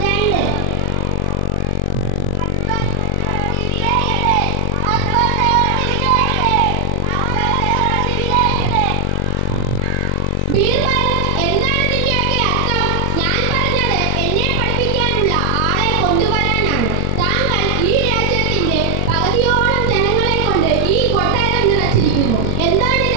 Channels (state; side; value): different; both; correlation 0.00